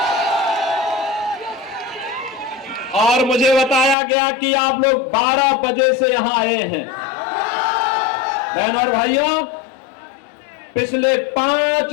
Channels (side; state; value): right; drops out; at 4.0 s